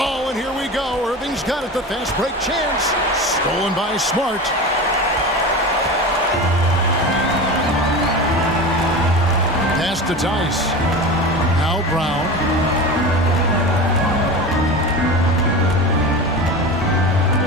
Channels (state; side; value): normal; both; correlation 0.29